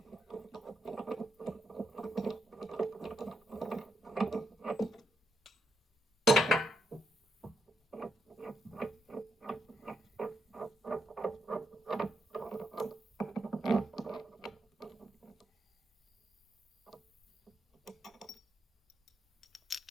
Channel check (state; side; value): normal; both; correlation 0.81